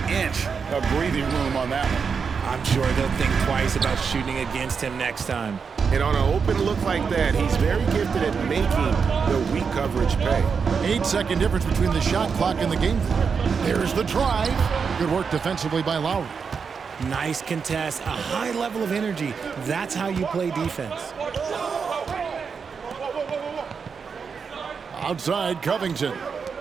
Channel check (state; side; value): quieter; left; 5.8 dB